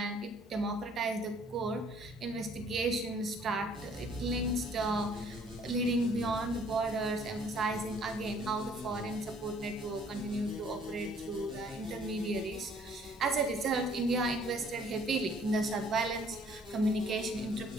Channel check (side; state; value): both; normal; correlation 0.59